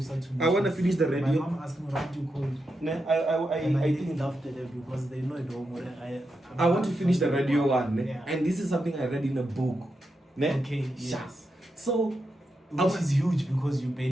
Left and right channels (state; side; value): normal; both; correlation 0.86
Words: I want to finish the radio. My mom asked me what you call. I think laughed at them because they know it all. I want to finish the radio one. And this is something I read in a book. Okay, yes. So, which is huge because you